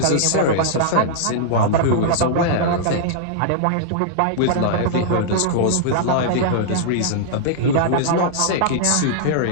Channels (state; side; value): different; both; correlation -0.01